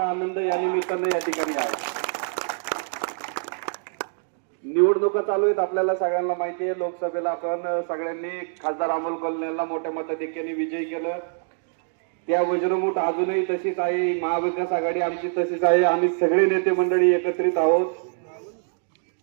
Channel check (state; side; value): silent; left; digital silence